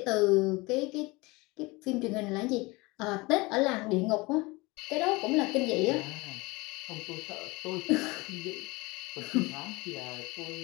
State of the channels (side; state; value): right; quieter; 23.7 dB